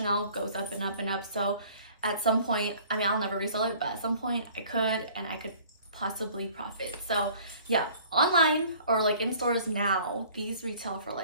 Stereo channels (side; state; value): both; inverted; correlation -0.52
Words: goes up and up and up. So at some point, I mean, I'll never resell it, but at some point I could, and I could possibly profit. So yeah, online or like in stores now, these retail for